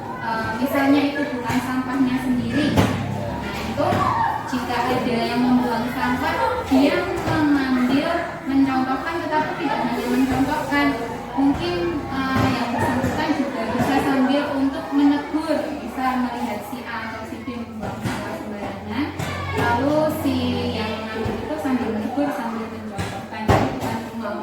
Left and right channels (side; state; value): both; identical; correlation 1.00